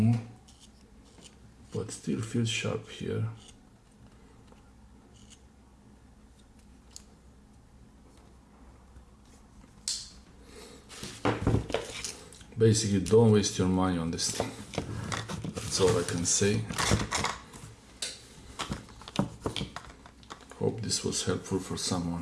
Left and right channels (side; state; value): both; identical; correlation 1.00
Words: but still feels sharp here. Basically, don't waste your money on this thing. That's all I can say. Hope this was helpful for